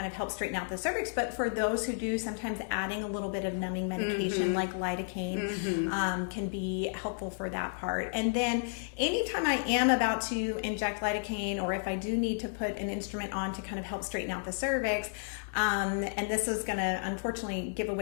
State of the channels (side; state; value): right; silent; digital silence